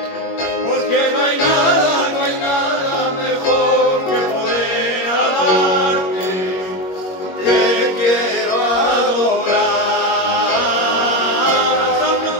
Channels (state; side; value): late; right; 21 ms